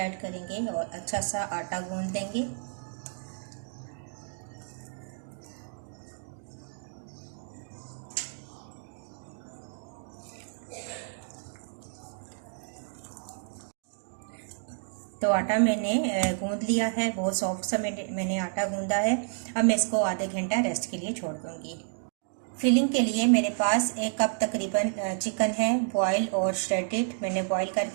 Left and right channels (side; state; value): left; silent; digital silence